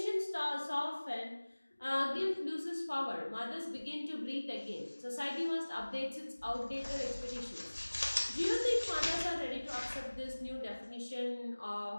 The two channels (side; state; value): both; inverted; correlation -1.00